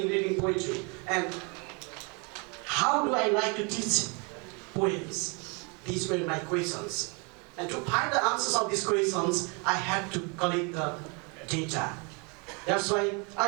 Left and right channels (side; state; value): left; quieter; 32.3 dB